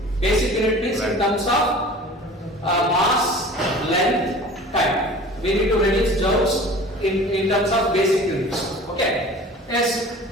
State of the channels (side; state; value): both; normal; correlation 0.42